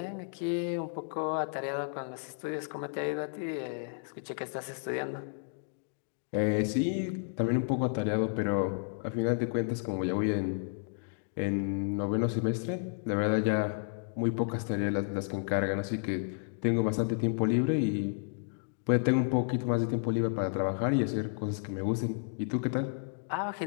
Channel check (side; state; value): right; silent; digital silence